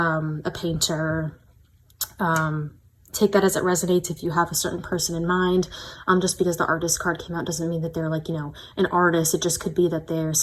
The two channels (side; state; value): both; identical; correlation 1.00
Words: painter. Take that as it resonates if you have a certain person in mind. Just because the artist card came out doesn't mean that they're like, you know, an artist. It just could be that they're